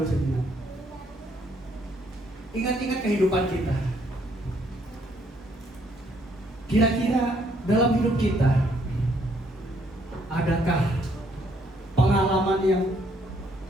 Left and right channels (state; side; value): normal; both; correlation 0.68